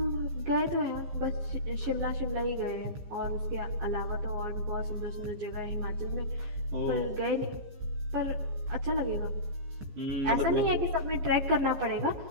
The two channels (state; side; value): late; left; 15 ms